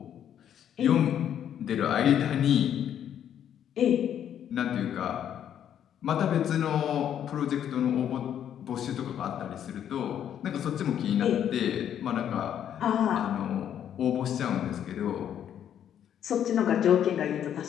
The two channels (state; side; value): quieter; right; 9.7 dB